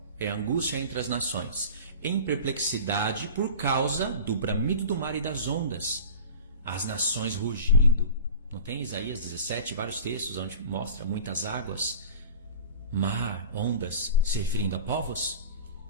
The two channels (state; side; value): inverted; both; correlation -0.38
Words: É angústia entre as nações. Em perplexidade por causa do bramido do mar e das ondas. As nações rugindo. Não tem Isaías 17, vários textos onde mostra muitas águas, mar, ondas, se referindo a povos?